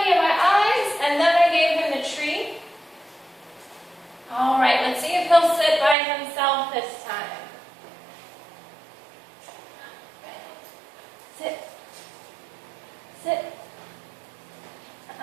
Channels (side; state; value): left; drops out; at 6.0 s